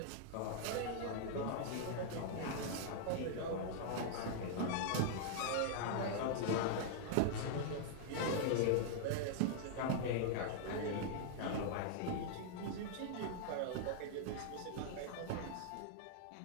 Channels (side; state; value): both; different; correlation -0.01